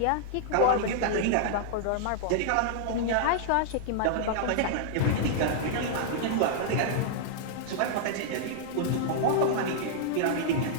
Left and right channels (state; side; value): different; both; correlation -0.01